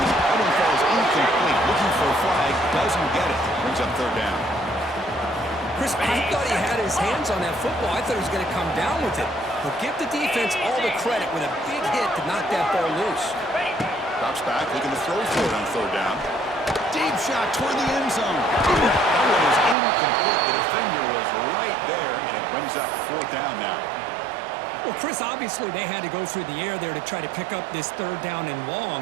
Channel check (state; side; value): drops out; left; at 19.8 s